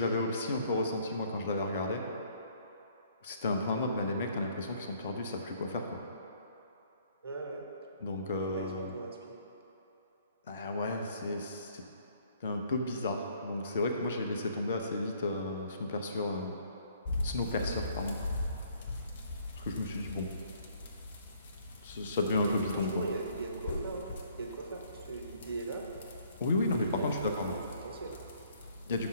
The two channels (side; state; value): both; inverted; correlation -0.62